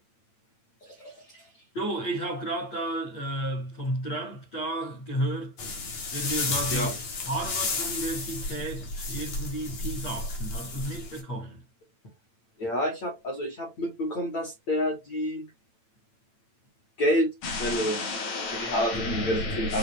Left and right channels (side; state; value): right; late; 8.9 ms